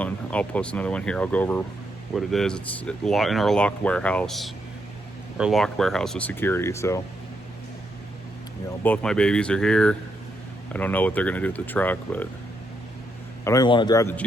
and I'll post another one here. I'll go over what it is. It's in our locked warehouse. Our locked warehouse with security. So, both my babies are here. I don't know what they're going to do with the truck, but I don't even want to drive the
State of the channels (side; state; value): both; normal; correlation 0.79